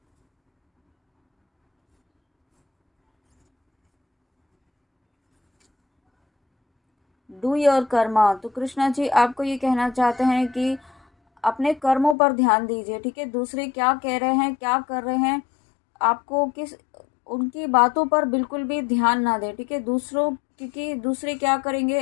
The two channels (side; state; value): right; drops out; at 12.2 s